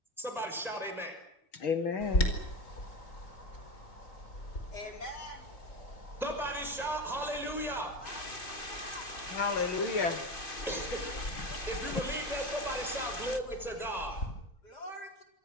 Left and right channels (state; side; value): late; right; 2.5 ms